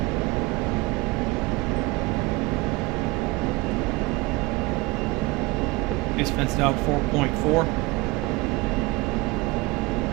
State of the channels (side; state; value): left; quieter; 22.7 dB